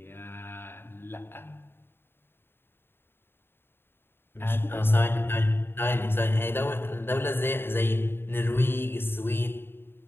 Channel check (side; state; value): right; late; 0.11 ms